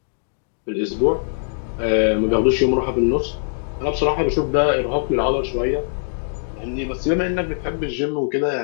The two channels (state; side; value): silent; right; digital silence